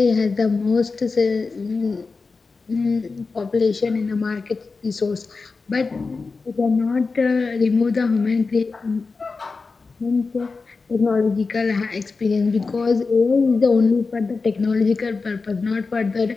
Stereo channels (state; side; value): quieter; right; 4.3 dB